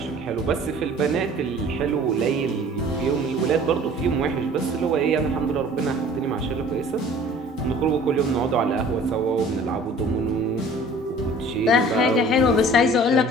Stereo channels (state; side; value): normal; both; correlation 0.48